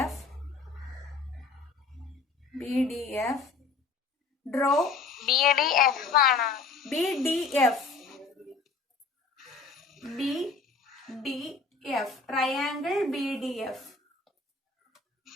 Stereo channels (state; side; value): quieter; right; 4.4 dB